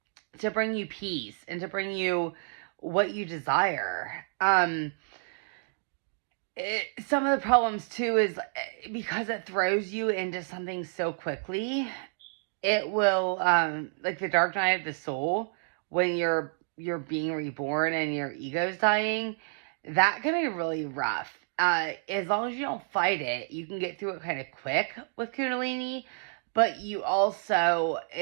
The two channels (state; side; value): silent; left; digital silence